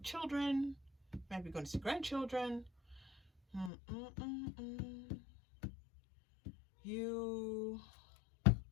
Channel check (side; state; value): right; drops out; at 3.7 s